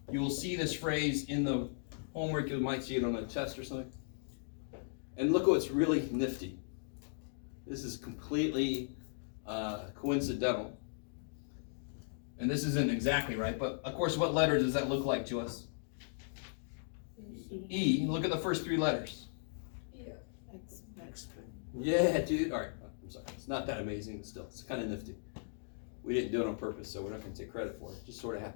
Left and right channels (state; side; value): silent; right; digital silence